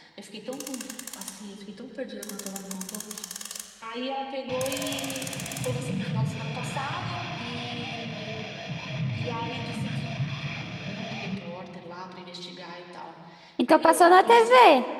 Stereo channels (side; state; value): both; identical; correlation 1.00